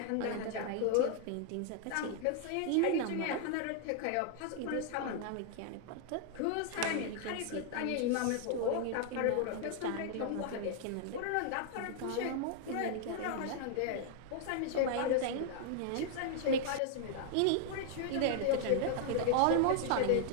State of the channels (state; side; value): different; both; correlation 0.00